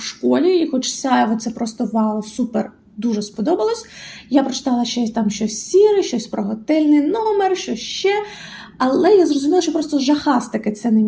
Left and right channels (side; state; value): both; identical; correlation 1.00